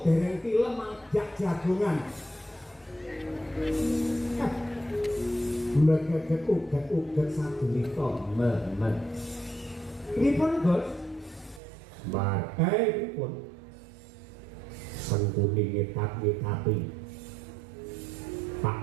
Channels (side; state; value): left; drops out; at 11.6 s